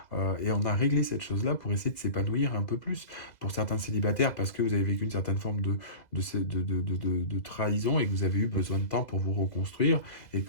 Et on a réglé cette chose-là pour essayer de s'épanouir un peu plus. Pour certains célibataires, parce que vous avez vécu une certaine forme de trahison et que vous avez eu besoin de temps pour vous reconstruire. Et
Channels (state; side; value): late; right; 2.0 ms